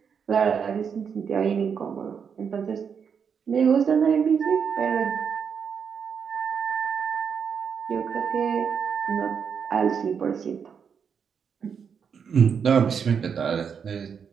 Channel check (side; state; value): left; quieter; 6.8 dB